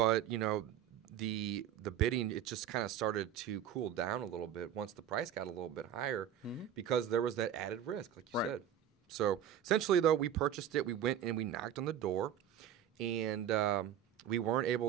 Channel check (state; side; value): quieter; left; 9.7 dB